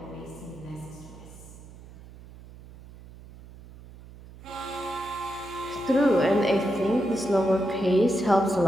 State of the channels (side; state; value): right; noise; hum, 19 dB below the sound